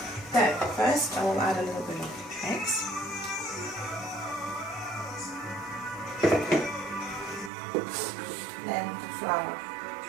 So first I will add a little bit of eggs. Then the flour.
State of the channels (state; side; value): drops out; left; at 7.5 s